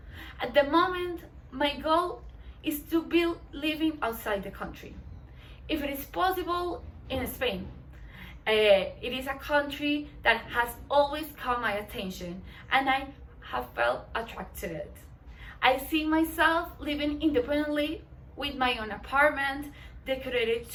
At the moment, my goal is to be living outside the country. If it is possible, in Spain. It is a country that has always caught my attention, and I have felt attracted to it. I see myself living independently with my own apartment decorated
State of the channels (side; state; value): both; identical; correlation 1.00